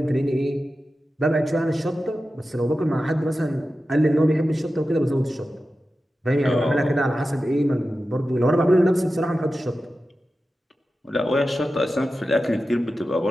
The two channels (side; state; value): both; normal; correlation 0.93